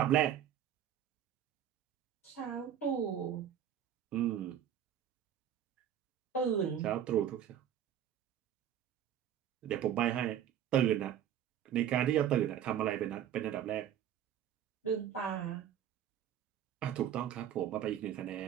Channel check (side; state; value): left; quieter; 10.0 dB